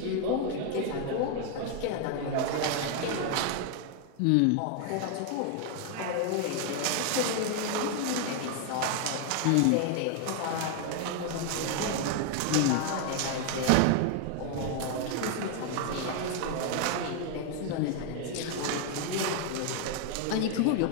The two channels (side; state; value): both; different; correlation 0.00